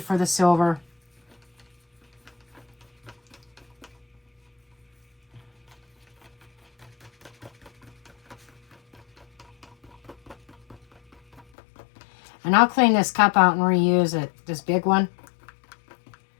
the silver. And I'll clean this cup out and reuse it, this big one.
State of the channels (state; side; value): drops out; right; at 11.4 s